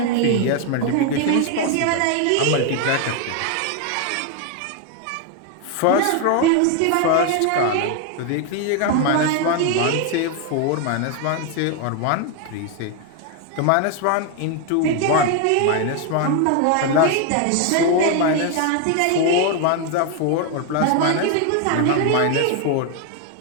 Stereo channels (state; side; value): different; both; correlation 0.01